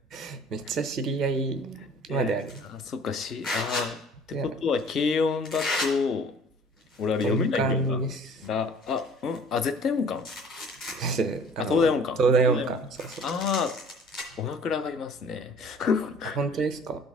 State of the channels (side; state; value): both; normal; correlation 0.50